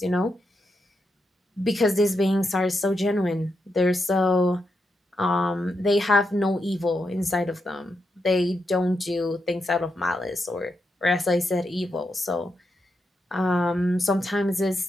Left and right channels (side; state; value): both; normal; correlation 0.84